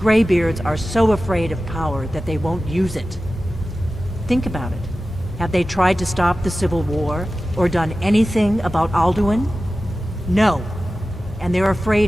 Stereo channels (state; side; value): normal; both; correlation 0.95